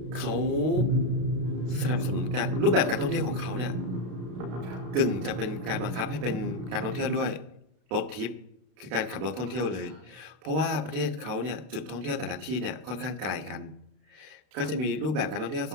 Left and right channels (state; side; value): late; left; 32 ms